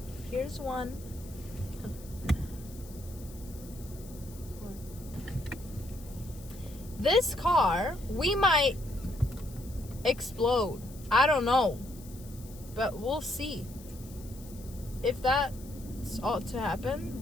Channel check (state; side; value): noise; left; hiss, 20 dB below the sound